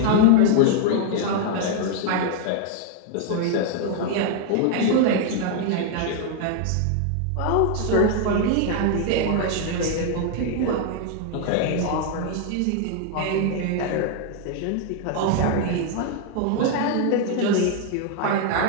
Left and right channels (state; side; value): different; both; correlation 0.00